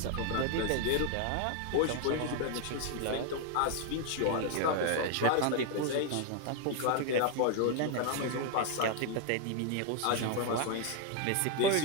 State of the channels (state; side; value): different; both; correlation 0.01